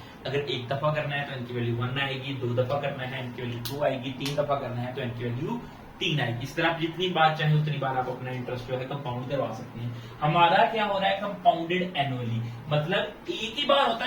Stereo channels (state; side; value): identical; both; correlation 1.00